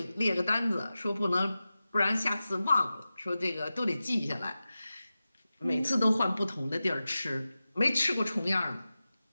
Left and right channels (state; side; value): inverted; both; correlation -0.95